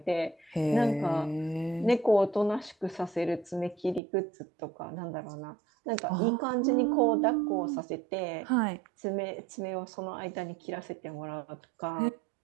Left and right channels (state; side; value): drops out; left; at 4.0 s